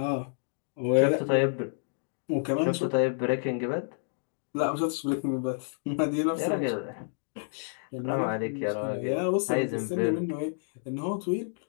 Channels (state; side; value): silent; right; digital silence